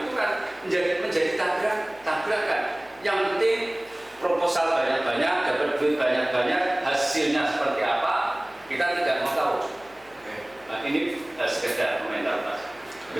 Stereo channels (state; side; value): noise; left; hum, 28 dB below the sound